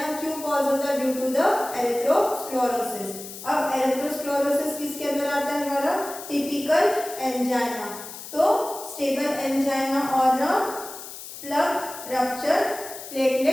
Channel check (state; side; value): noise; left; hiss, 12 dB below the sound